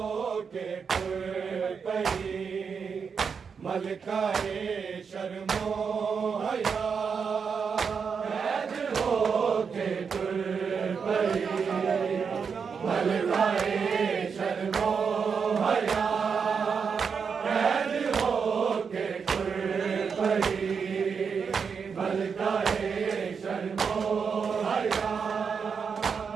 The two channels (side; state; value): left; quieter; 6.0 dB